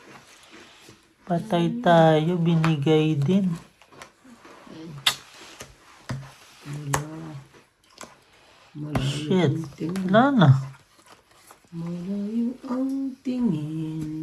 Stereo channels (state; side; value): identical; both; correlation 1.00